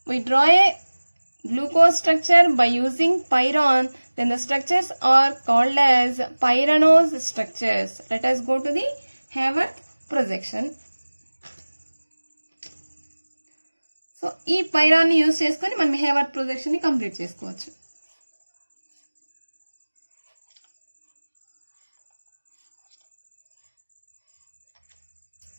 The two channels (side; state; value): both; inverted; correlation -1.00